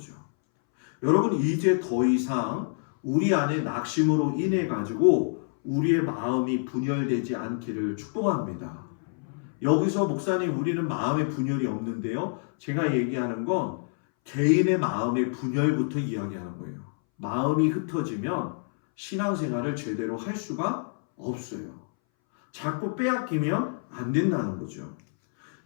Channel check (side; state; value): right; silent; 60 dB below the other